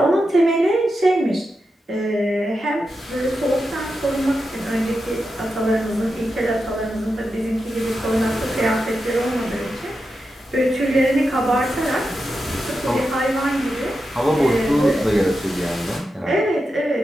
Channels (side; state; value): both; normal; correlation 0.89